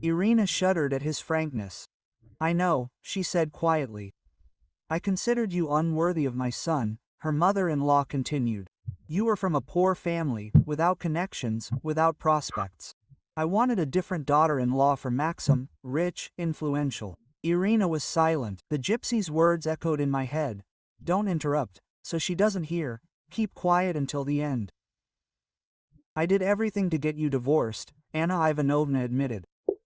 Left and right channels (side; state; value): both; identical; correlation 1.00